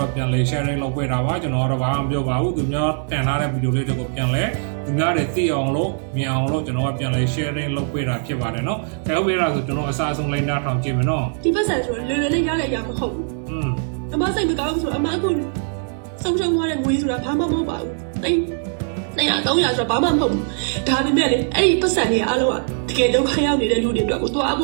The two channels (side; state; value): left; silent; 65 dB below the other